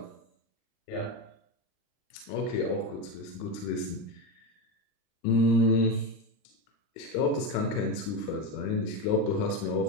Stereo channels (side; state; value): right; late; 39 ms